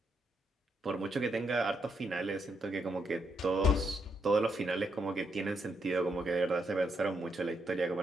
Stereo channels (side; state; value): both; normal; correlation 0.78